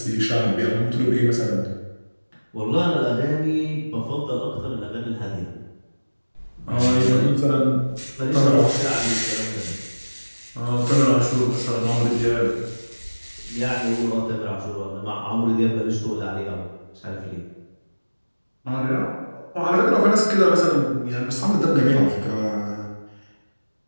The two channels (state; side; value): inverted; both; correlation -1.00